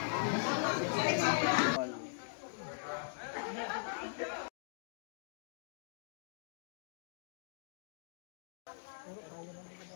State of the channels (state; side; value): silent; right; digital silence